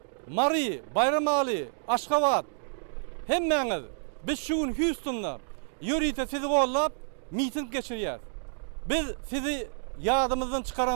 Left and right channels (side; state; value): left; silent; digital silence